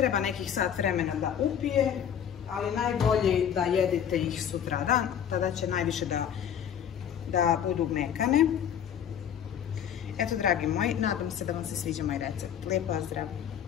nekih sat vremena da upije, ali najbolje da jedete ih sutradan, tada će najviše da budu mekane. Eto, dragi moji, nadam se da vam se sviđa moj recept. Lijep pozdrav!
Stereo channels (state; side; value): quieter; right; 9.0 dB